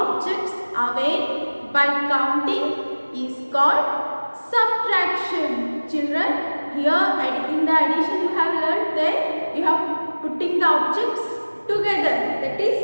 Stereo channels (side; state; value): both; inverted; correlation -1.00